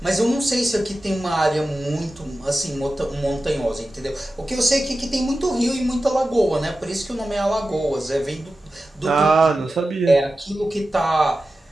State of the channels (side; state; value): both; normal; correlation 0.94